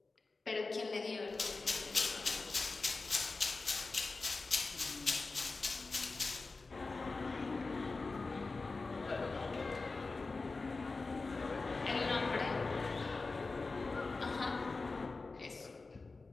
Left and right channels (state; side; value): quieter; right; 3.8 dB